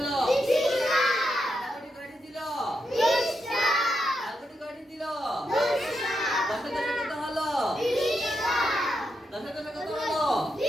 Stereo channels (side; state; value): both; normal; correlation 0.84